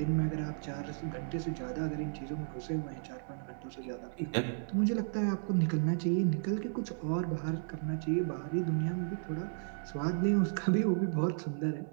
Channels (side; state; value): left; silent; digital silence